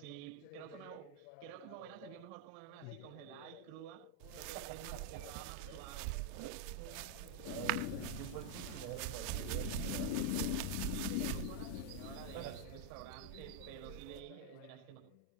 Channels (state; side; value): different; both; correlation 0.00